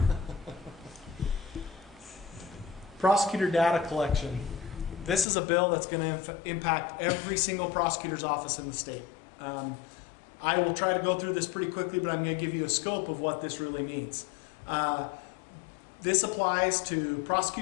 Prosecutor data collection. This is a bill that's going to impact every single prosecutor's office in the state. I will try to go through this pretty quickly, but I'm going to give you a scope of what this really means. This applies to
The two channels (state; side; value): drops out; right; at 5.2 s